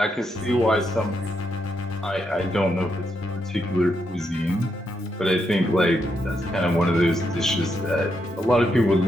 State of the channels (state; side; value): normal; both; correlation 0.81